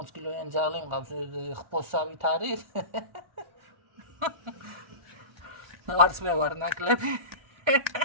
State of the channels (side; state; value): left; late; 1.4 ms